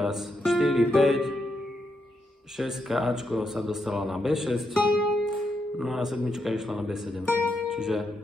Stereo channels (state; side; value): normal; both; correlation 0.81